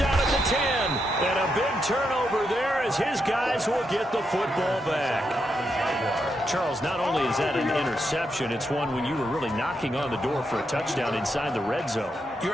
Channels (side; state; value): both; normal; correlation 0.82